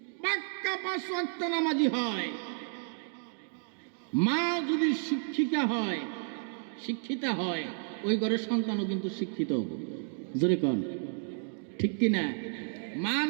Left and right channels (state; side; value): silent; left; 57 dB below the other